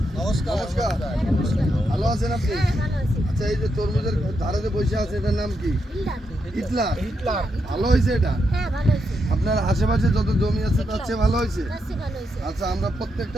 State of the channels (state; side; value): normal; both; correlation 0.82